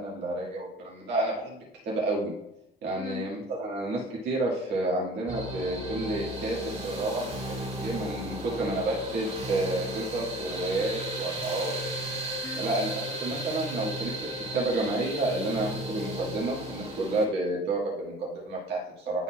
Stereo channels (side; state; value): both; normal; correlation 0.45